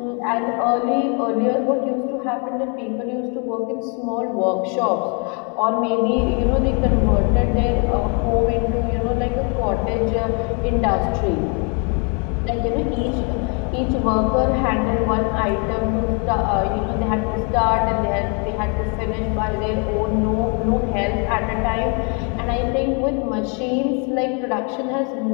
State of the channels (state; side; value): quieter; right; 36.1 dB